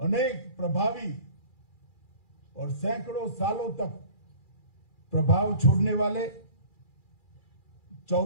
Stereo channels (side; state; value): right; late; 2.4 ms